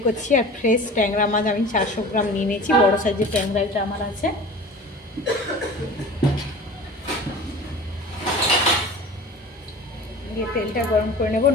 করছি। আর ফ্রেশ ট্যাংরা মাছ আমি 400 গ্রাম নিয়ে নিয়েছি, বড়ো সাইজের ট্যাংরা এটা আমার আছে। দিয়ে তেলটা গরম করে নেব।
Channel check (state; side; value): normal; both; correlation 0.38